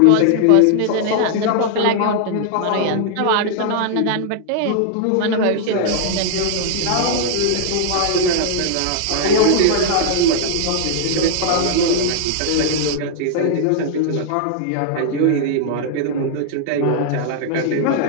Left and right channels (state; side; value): different; both; correlation -0.01